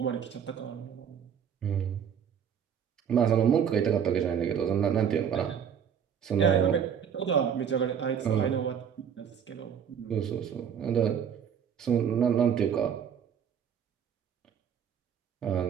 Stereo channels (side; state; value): left; quieter; 8.0 dB